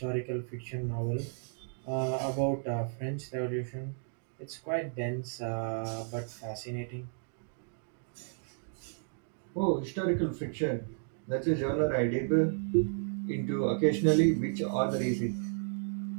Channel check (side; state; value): left; silent; digital silence